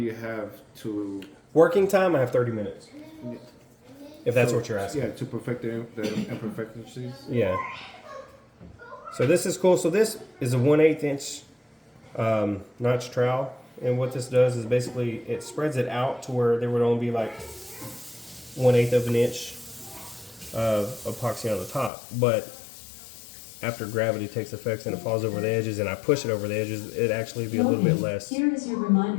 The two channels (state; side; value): drops out; right; at 21.9 s